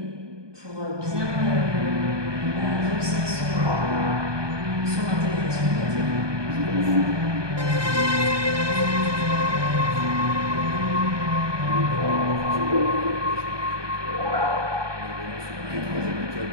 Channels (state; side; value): late; left; 1.2 ms